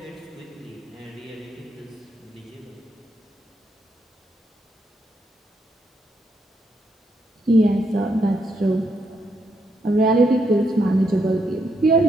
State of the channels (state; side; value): normal; both; correlation 0.78